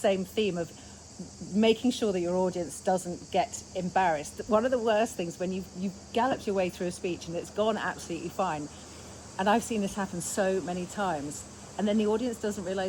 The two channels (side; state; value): both; identical; correlation 1.00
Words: theme of making sure that your audience doesn't get embarrassed. One of the worst things, when you've galloped your way through a speech and it's gone absolutely fine, and I've seen this happen so many times, and then the audience doesn't